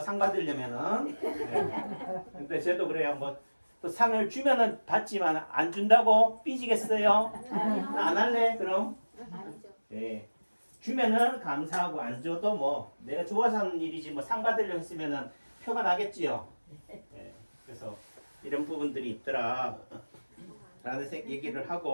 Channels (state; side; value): inverted; both; correlation -1.00